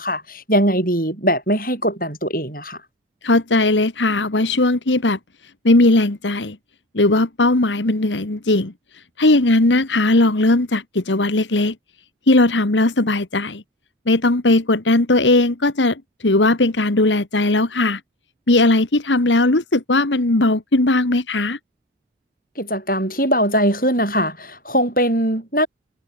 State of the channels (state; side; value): normal; both; correlation 0.29